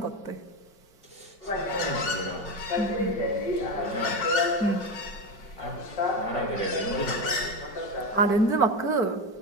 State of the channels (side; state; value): right; late; 5.4 ms